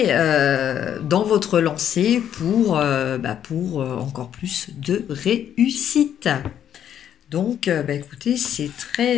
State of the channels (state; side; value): quieter; right; 9.8 dB